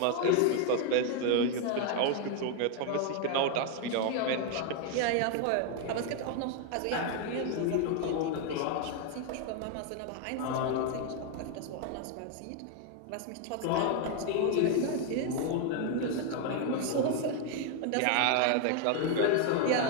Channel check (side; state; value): both; different; correlation 0.01